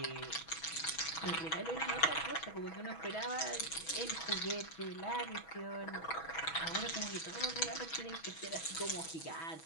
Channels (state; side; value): late; right; 6.2 ms